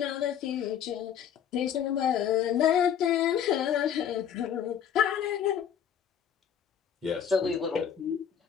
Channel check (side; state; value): right; quieter; 8.8 dB